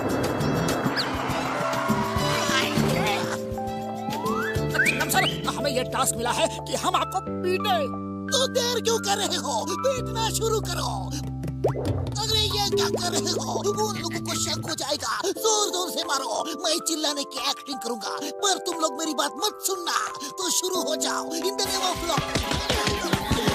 हमें ये टास्क मिला है कि हम आपको पीटे। तो देर क्यों कर रहे हो? पीटना शुरू करो। अरे ये क्या कर रहे हो? उन लोगों को शक हो जाएगा। जोर से मारो, मैं चिल्लाने की एक्टिंग करूंगा, पर तुम लोग मेरी बात मत सुनना। तो शुरू हो जाओ। In the name of law.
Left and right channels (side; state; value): both; identical; correlation 1.00